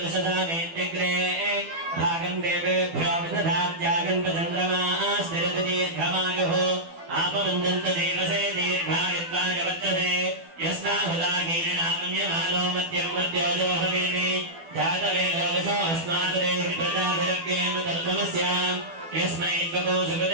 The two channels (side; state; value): left; late; 12 ms